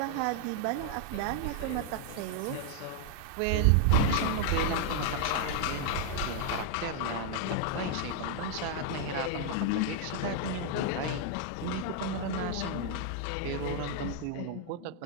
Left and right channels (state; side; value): different; both; correlation 0.00